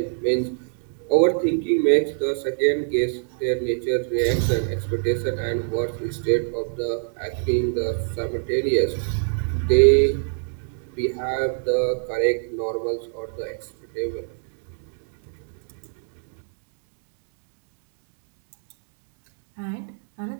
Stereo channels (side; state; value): left; silent; digital silence